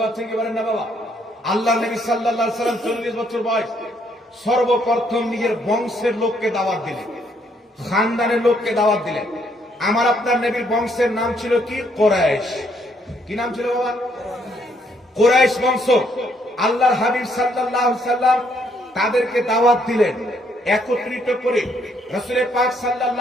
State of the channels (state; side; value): normal; both; correlation 0.70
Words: পারছেন কি বলেন না বাবা? আল্লাহ নবী সাল্লাল্লাহু আলাইহি সাল্লাম 40 বছর বয়স, সর্বপ্রথম নিজের বংশের লোককে দাওয়াত দিলেন, খানদানের লোককে দাওয়াত দিলেন। আমার আপনার নবীর বংশের নাম ছিল কি? কুরাইশ। কি নাম ছিল বাবা? কুরাইশ বংশ। আল্লাহর হাবিব সাল্লাল্লাহু আলাইহি সাল্লাম তাদেরকে দাওয়াত দিলেন একত্রিত করে। রাসূল পাক